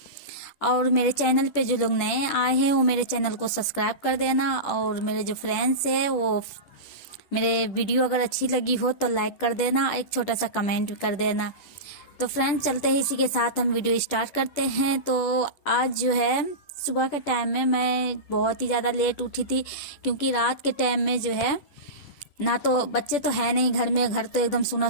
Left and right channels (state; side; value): late; right; 10 ms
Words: और मेरे चैनल पे जो लोग नए आए हैं वो मेरे चैनल को सब्सक्राइब कर देना। और मेरे जो फ्रेंड्स है वो मेरे वीडियो अगर अच्छी लगी हो तो लाइक कर देना, एक छोटा सा कमेंट भी कर देना। तो फ्रेंड्स, चलते हैं इसी के साथ हम वीडियो स्टार्ट करते हैं। तो आज जो है सुबह के टाइम में मैं बहुत ही ज़्यादा लेट उठी थी, क्योंकि रात के टाइम में जो है ना तो बच्चे तो है नहीं घर में, घर तो एकदम सुना